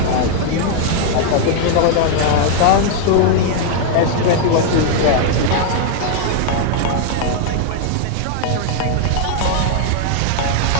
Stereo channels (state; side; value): different; both; correlation 0.00